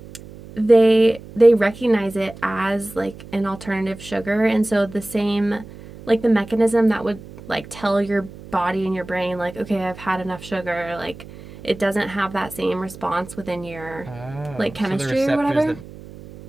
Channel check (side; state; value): right; noise; hum, 17 dB below the sound